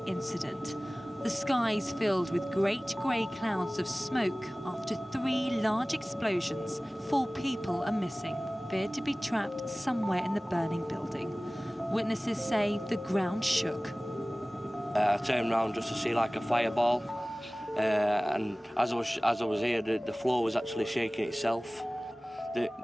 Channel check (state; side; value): normal; both; correlation 0.98